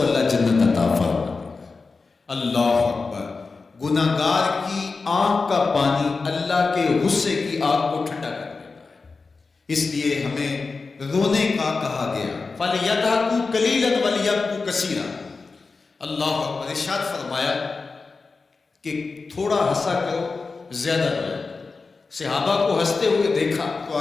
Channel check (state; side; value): quieter; right; 4.2 dB